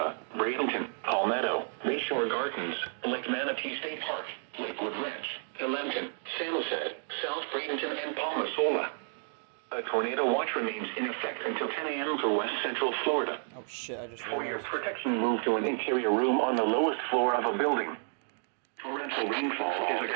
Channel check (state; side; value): silent; left; 57 dB below the other